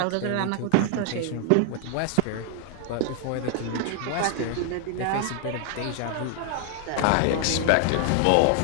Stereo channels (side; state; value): both; different; correlation 0.00